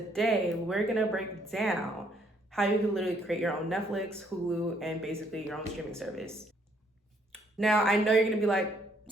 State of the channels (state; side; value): normal; both; correlation 0.68